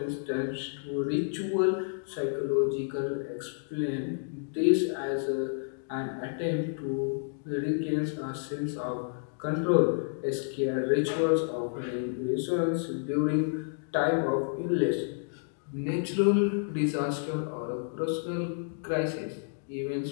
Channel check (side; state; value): right; silent; digital silence